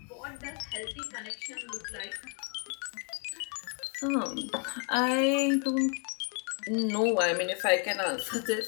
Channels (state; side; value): quieter; right; 39.0 dB